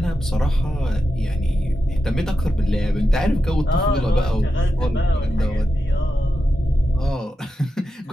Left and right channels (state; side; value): normal; both; correlation 0.89